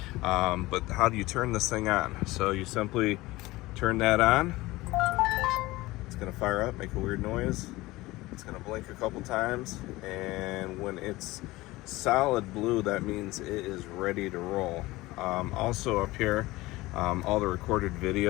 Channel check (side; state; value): right; quieter; 19.5 dB